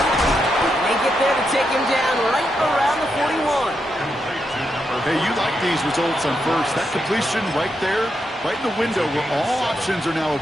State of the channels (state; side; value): normal; both; correlation 0.83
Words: They get there to take him down right around the 41. Hey, you like these results on first. That completion right there, right in the window where all options are now